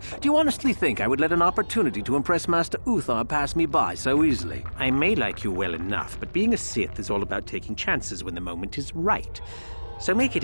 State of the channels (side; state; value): both; inverted; correlation -1.00